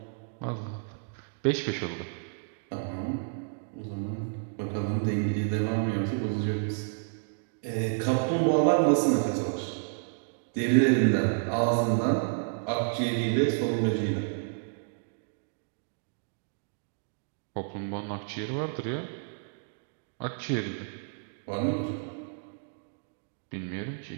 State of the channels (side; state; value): left; silent; digital silence